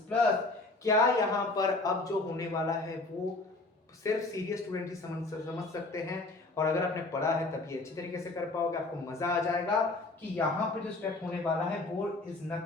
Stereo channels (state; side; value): quieter; right; 3.1 dB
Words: प्लस। क्या यहाँ पर अब जो होने वाला है वो सिर्फ सीरियस स्टूडेंट ही समझ सकते हैं, और अगर आपने पढ़ा है तभी अच्छी तरीके से कर पाओगे, आपको मजा आ जाएगा कि यहाँ पे जो स्टेप होने वाला है वो is